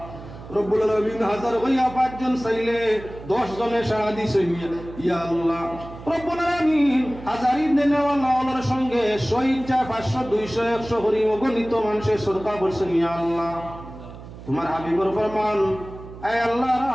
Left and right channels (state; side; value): noise; right; hum, 15 dB below the sound